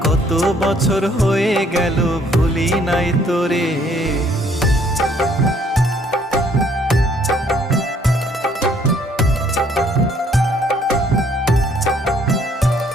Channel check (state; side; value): normal; both; correlation 0.63